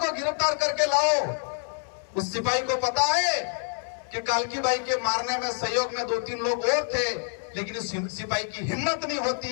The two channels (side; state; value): right; silent; 60 dB below the other